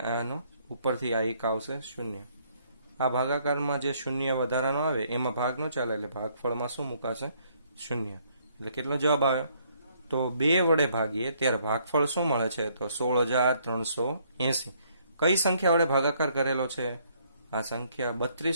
આનો ઉપરથી આ 1 આવશે 0. આ ભાગાકારમાં જે 0 વધારાનો આવે એમાં ભાગ ન ચાલે એટલે ભાગફળમાં શું મુકાશે? 0. એટલે કેટલો જવાબ આવે? તો 2 વડે ભાગીએ ત્યારે ભાગફળ શું મળે છે? તો 16,380. કઈ સંખ્યા વડે ભાગાકાર કરેલો છે? આ સંખ્યા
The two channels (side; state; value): both; inverted; correlation -0.67